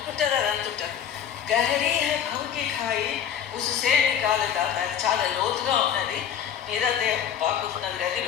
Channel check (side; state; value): right; quieter; 8.8 dB